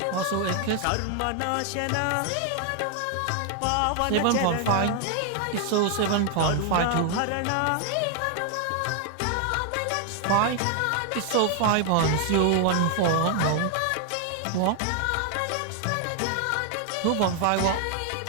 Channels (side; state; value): both; different; correlation 0.00